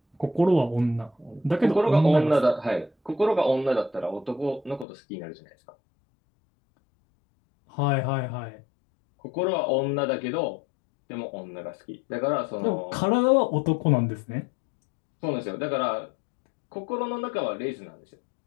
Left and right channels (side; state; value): right; drops out; at 4.9 s